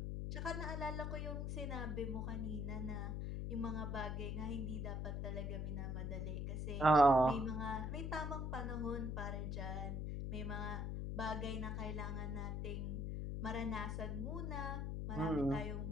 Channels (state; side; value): noise; left; hum, 2 dB below the sound